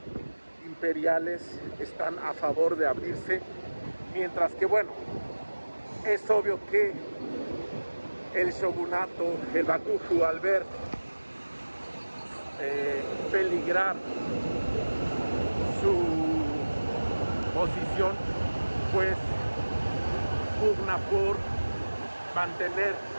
imperiales están a favor de abrirse, mientras que bueno, es obvio que el shogunato, el Bakufu, al ver peligrar su posición, pues pugna por mantener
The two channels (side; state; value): both; inverted; correlation -1.00